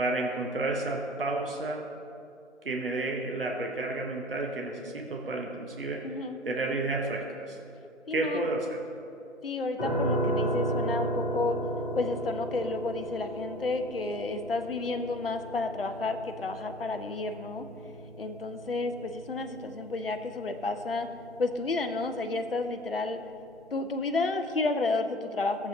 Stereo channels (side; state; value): both; normal; correlation 0.44